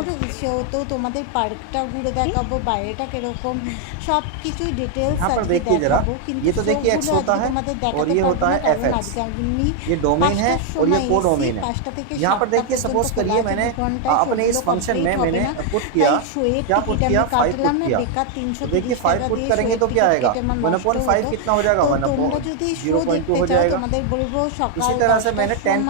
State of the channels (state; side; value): different; both; correlation 0.00